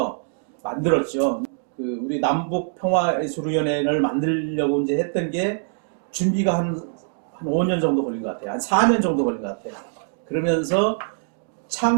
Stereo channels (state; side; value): silent; left; 63 dB below the other